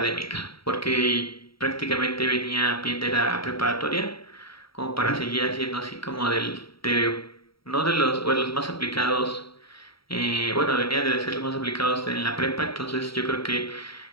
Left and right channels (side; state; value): right; late; 0.75 ms